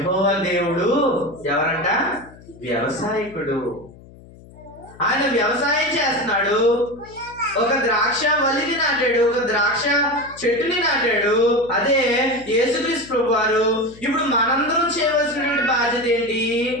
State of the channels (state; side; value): noise; left; hum, 22 dB below the sound